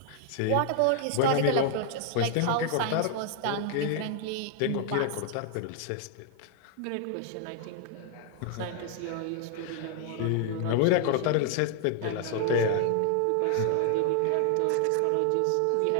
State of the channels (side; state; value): both; different; correlation 0.00